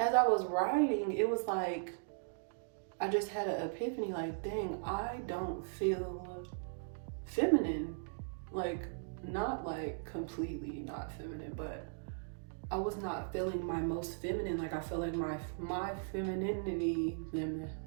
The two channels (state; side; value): silent; left; digital silence